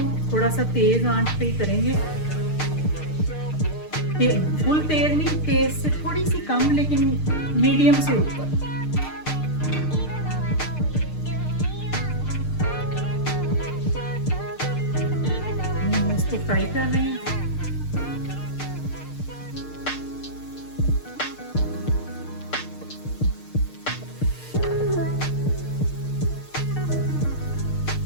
थोड़ा सा तेज़ आंच पे ही करेंगे, फुल तेज़ नहीं, तेज़ से थोड़ी सी कम, लेकिन मीडियम से ऊपर। इसको फ्राई कर रहे हैं।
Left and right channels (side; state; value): right; late; 6.6 ms